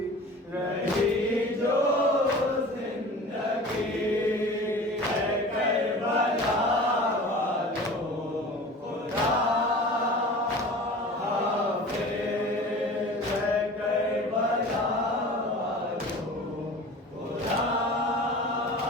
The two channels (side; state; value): both; normal; correlation 0.39